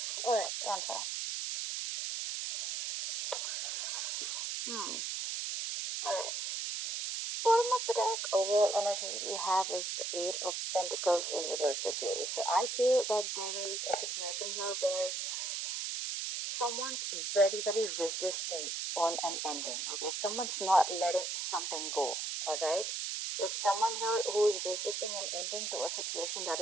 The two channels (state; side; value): noise; right; hiss, 2 dB below the sound